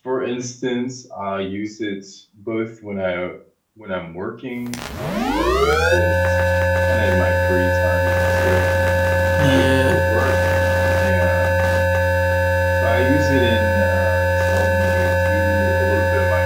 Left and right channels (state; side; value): identical; both; correlation 1.00